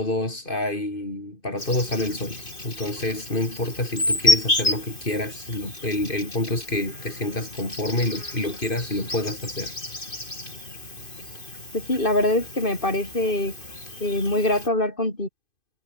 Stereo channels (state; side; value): late; right; 2.5 ms